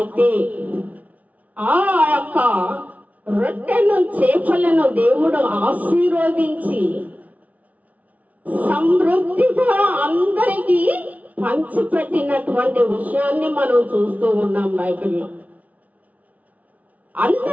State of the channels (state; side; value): late; left; 0.070 ms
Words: ఆ యొక్క రొట్టెను, చేపలను దేవుడు ఆశీర్వదించి సమృద్ధిగా అందరికీ పంచిపెట్టినటువంటి విషయాన్ని మనం చూస్తూ ఉన్నాం బైబిల్లో.